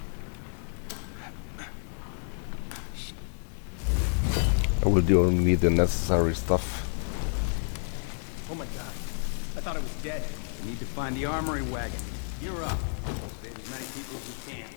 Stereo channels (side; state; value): right; silent; 58 dB below the other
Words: I will do only the necessary stuff. Oh my god. I thought I was dead. We need to find the armory wagon. Gear up. Save as many people as we can.